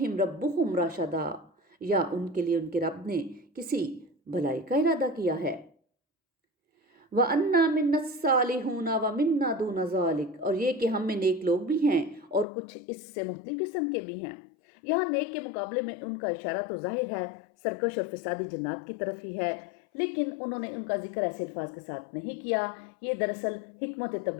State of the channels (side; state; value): right; drops out; at 12.5 s